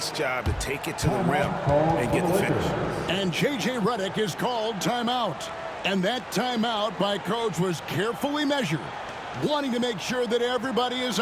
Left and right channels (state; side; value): identical; both; correlation 1.00